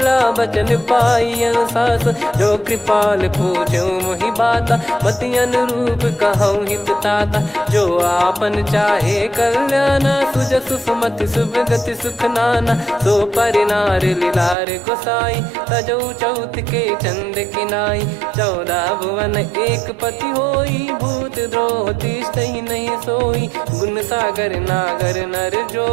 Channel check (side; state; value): left; drops out; at 14.6 s